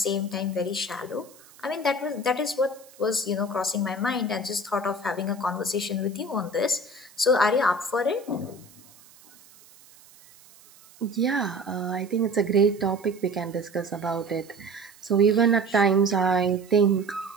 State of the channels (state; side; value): noise; right; hiss, 25 dB below the sound